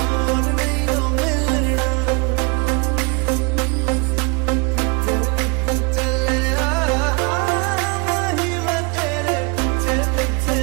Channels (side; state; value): left; quieter; 30.4 dB